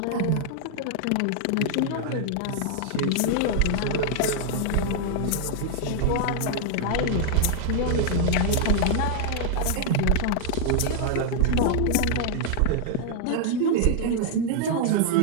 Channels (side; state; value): both; different; correlation -0.01